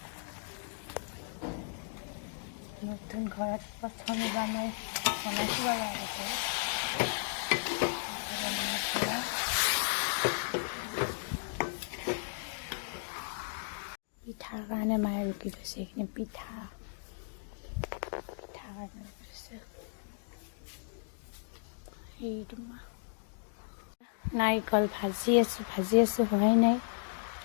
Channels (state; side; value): silent; right; digital silence